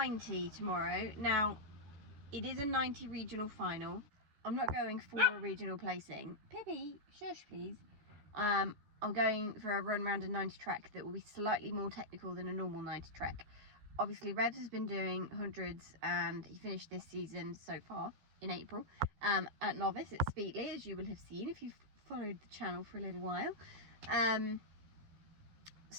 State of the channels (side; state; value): left; late; 14 ms